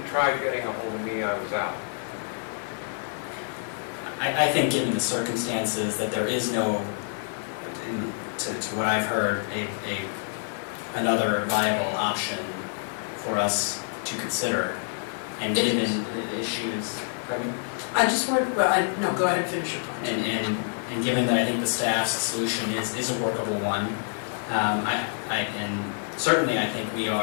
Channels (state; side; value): silent; right; digital silence